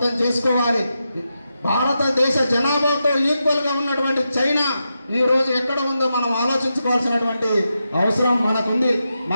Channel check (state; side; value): inverted; both; correlation -0.87